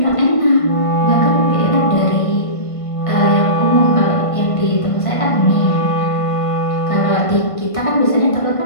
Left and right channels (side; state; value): right; late; 1.5 ms